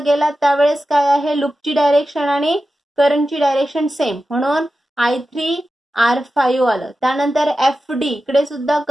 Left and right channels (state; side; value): normal; both; correlation 0.92